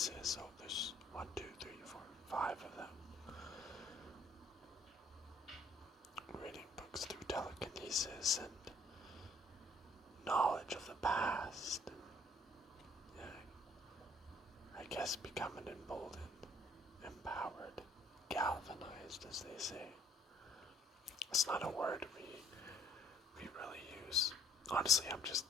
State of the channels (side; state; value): both; normal; correlation 0.61